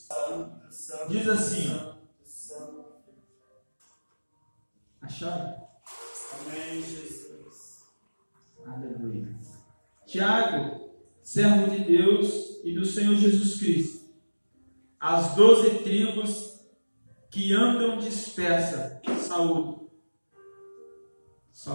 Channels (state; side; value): inverted; both; correlation -1.00